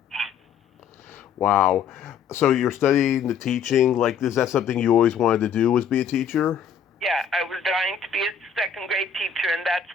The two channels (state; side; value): quieter; right; 7.0 dB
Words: Wow. So you're studying the teaching, like, is that something you always wanted to do, was be a teacher? Yeah, I was dying to be a second grade teacher, and that's